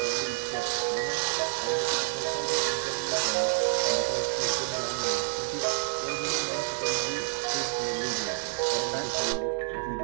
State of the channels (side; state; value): left; silent; digital silence